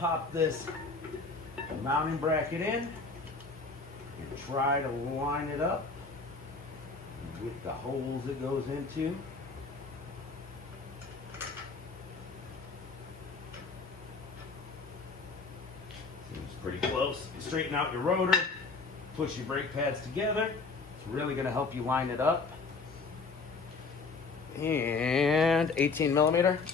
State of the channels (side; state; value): right; quieter; 4.2 dB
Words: this mounting bracket in and try to line it up with the holes it goes into. Seems pretty close. Straighten out your rotor, push your brake pads together. It's really gonna help you line it up. And 18 millimeter.